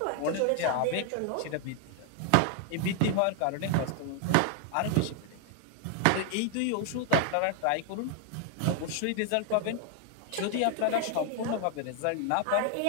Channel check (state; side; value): different; both; correlation 0.00